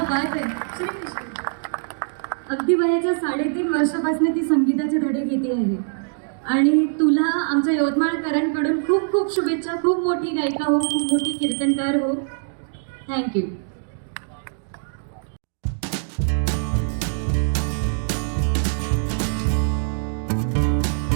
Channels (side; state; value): left; silent; digital silence